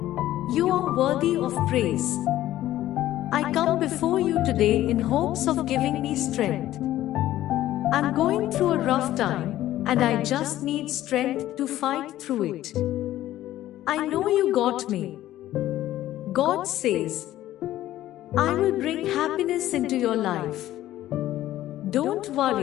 You are worthy of praise. I come before you today in hopes of giving me strength. I'm going through a rough time, and I just need strength to fight through it. I know you got me. God says, I will bring happiness into your life. Don't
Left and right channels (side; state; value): right; quieter; 14.0 dB